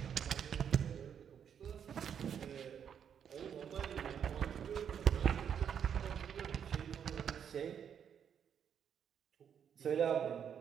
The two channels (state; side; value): quieter; left; 8.1 dB